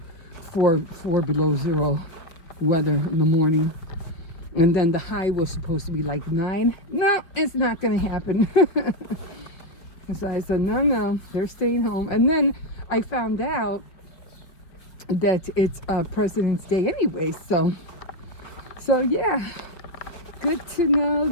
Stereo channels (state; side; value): late; right; 5.2 ms